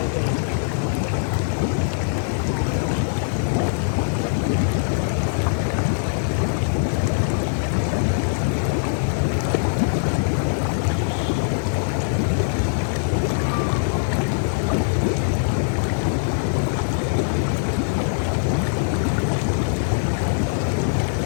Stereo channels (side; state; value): right; silent; 59 dB below the other